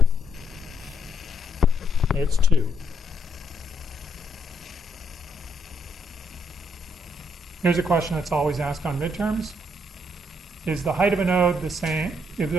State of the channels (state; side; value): normal; both; correlation 0.73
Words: It's 2. Here's a question that's always asked on midterms. Is the height of a node the same?